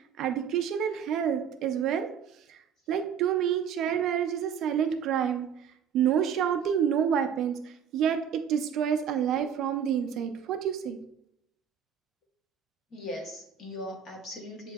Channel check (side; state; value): left; quieter; 8.1 dB